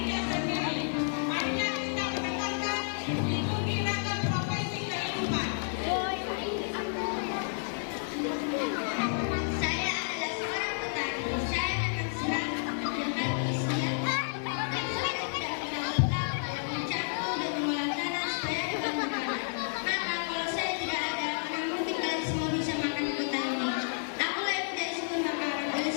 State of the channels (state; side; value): silent; right; 57 dB below the other